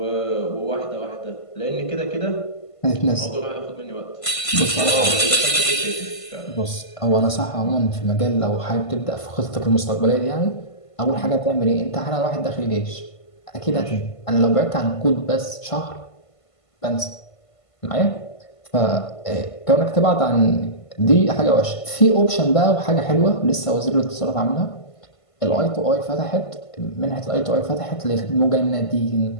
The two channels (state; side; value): late; right; 1.5 ms